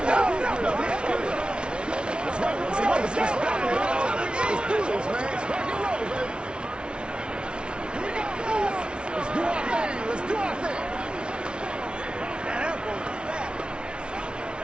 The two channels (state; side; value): late; left; 0.057 ms